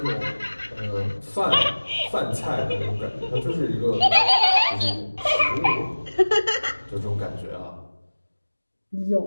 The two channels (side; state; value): both; inverted; correlation -1.00